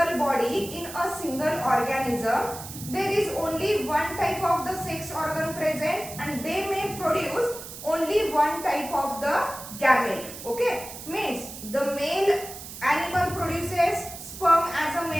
body, in a single organism, there is only one type of the sex organ present and they may produce only one type of the gamete. Okay, means the male animal produces sperm as a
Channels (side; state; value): right; noise; hiss, 12 dB below the sound